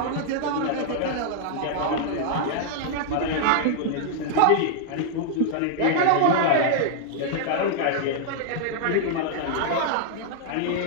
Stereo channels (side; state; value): both; different; correlation -0.01